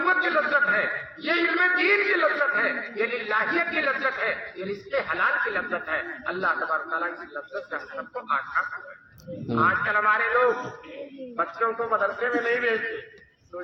کی لذت ہے، یہ علم دین کی لذت ہے، یہ للہیت کی لذت ہے، یہ رزق حلال کی لذت ہے۔ اللہ تبارک تعالیٰ کی لذت سے ہم سب کو آشنا کرے۔ آج کل ہمارے لوگ بچوں کو مدرسے میں نہیں بھیجتے،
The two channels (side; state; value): both; identical; correlation 1.00